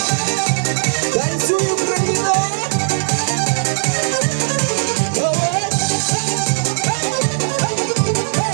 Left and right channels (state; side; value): silent; left; 67 dB below the other